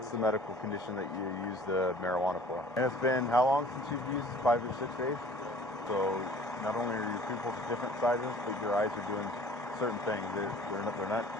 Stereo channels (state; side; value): normal; both; correlation 0.49